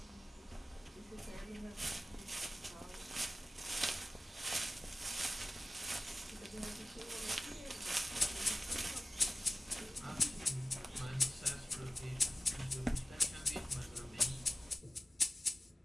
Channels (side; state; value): both; normal; correlation 0.95